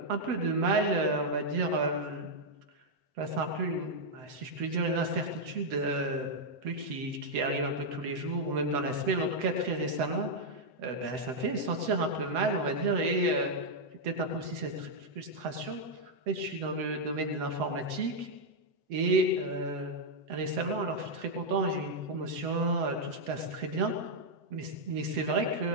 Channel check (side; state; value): left; late; 7.8 ms